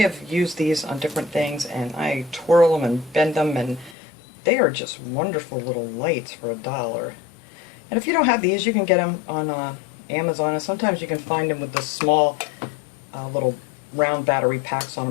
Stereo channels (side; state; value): right; drops out; at 4.0 s